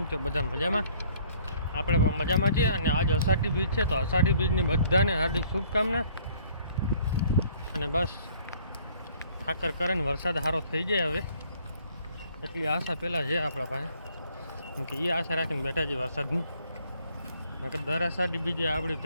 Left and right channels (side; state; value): both; inverted; correlation -0.59